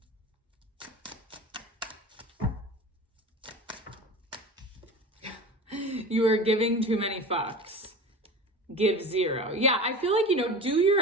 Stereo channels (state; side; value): normal; both; correlation 0.33